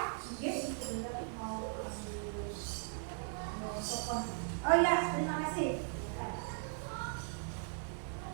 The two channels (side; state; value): left; silent; 52 dB below the other